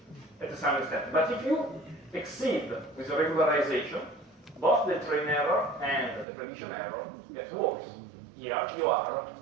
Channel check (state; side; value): drops out; left; at 6.2 s